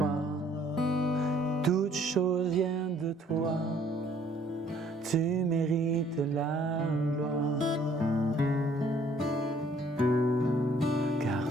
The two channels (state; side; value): normal; both; correlation 0.60